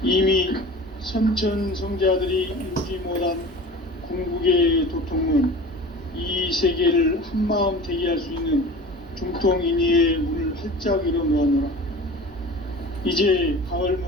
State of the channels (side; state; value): both; normal; correlation 0.38